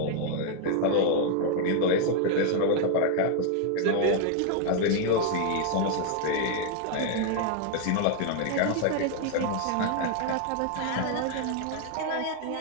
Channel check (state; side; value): different; both; correlation 0.00